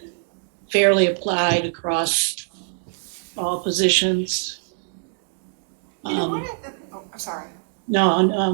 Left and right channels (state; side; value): silent; left; digital silence